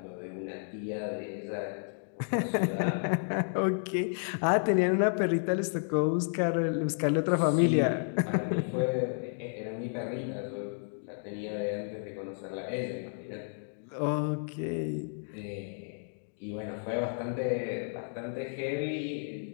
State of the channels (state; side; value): silent; right; digital silence